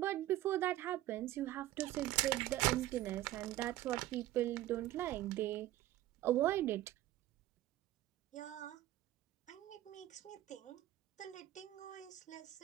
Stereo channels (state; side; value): quieter; left; 14.6 dB